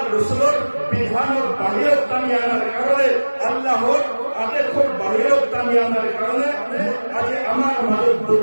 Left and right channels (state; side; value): inverted; both; correlation -1.00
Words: রসুলের বিধানের বাহিৰত কামি আনার কারণে, আল্লাহর আদেশৰ বাহিৰত কামি আনার কারণে আজি আমার মাজত